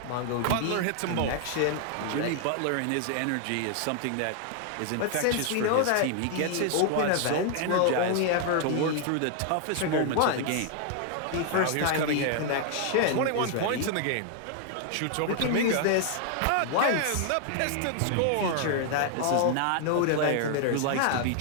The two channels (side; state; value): both; different; correlation 0.00